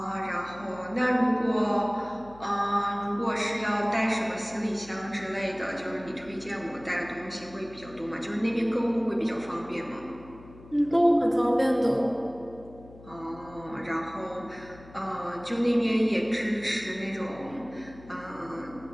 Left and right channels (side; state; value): left; noise; hum, 20 dB below the sound